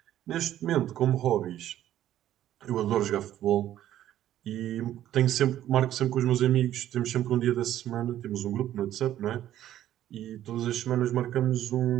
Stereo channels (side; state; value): left; quieter; 12.3 dB